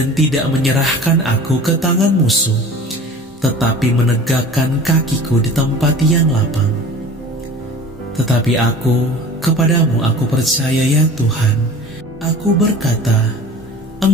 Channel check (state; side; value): normal; both; correlation 0.41